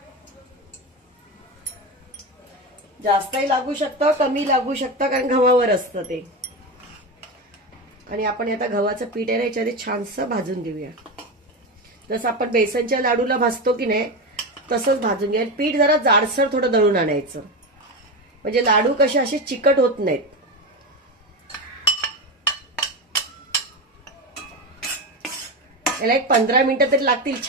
जास्तही लागू शकतं, कमी लागू शकतं, कारण गव्हावर असतं ते. आणि आपण आता गव्हाचं पीठ आहे ना याच्यामध्ये छानसं भाजून घेऊया. जसं आपण बेसनच्या लाडूला भाजतो की नाही तसंच भाजून घ्या. पीठ जरा जाडसर थोडं दळून आणायचं, म्हणजे लाडू कसे असे चिकट होत नाहीत. याला एक 15 मिनिटं तरी लागतील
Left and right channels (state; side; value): normal; both; correlation 0.18